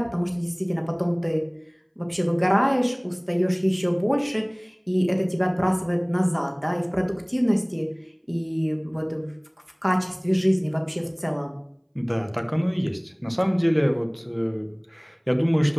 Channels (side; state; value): both; identical; correlation 1.00